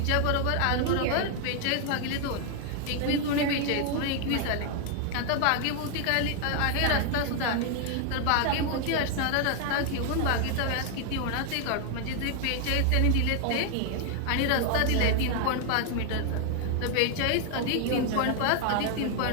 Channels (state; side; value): different; both; correlation 0.00